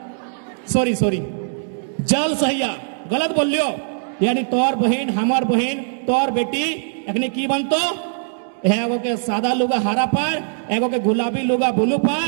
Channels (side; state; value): left; silent; digital silence